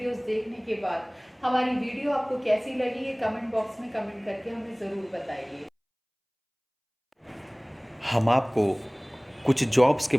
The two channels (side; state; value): both; identical; correlation 1.00